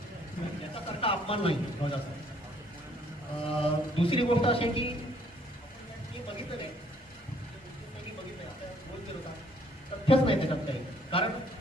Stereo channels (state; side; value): normal; both; correlation 0.64